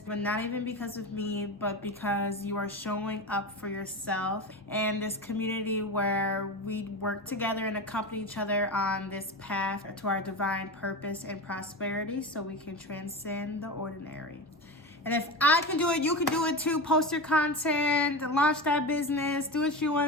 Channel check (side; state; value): both; normal; correlation 0.24